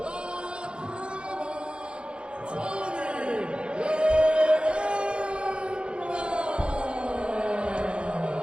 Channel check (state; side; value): late; left; 0.054 ms